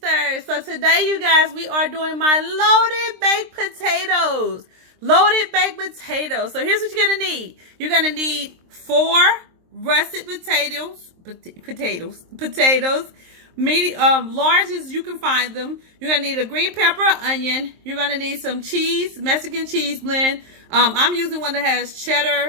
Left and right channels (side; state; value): left; late; 23 ms